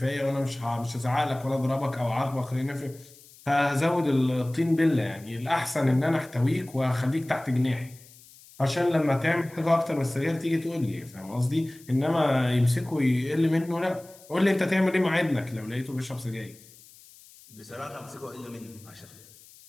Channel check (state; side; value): noise; left; hiss, 23 dB below the sound